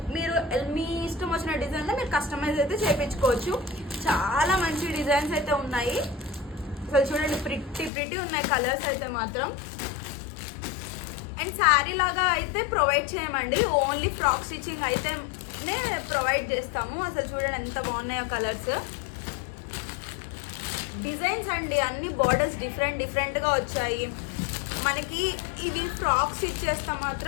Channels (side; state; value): right; drops out; at 7.9 s